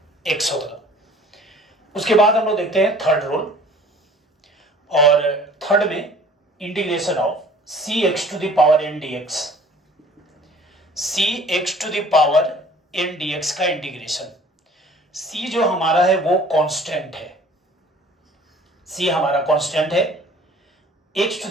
x होगा। उसके बाद हम लोग देखते हैं थर्ड रूल, और थर्ड में integration of c x to the power n d x, c x to the power n d x का इंटीग्रेशन। सी जो हमारा है वो कांस्टेंट है, सी हमारा कांस्टेंट है, x to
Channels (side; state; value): both; normal; correlation 0.50